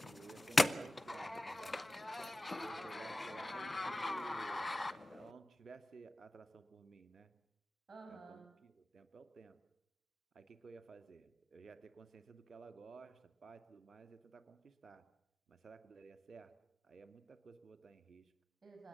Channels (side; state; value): both; normal; correlation 0.95